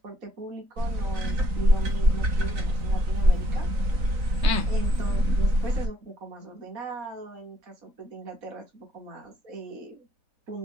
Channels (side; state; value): left; late; 3.9 ms